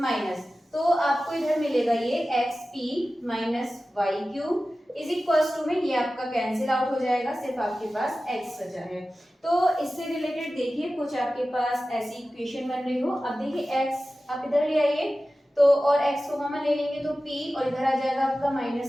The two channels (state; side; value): normal; both; correlation 0.95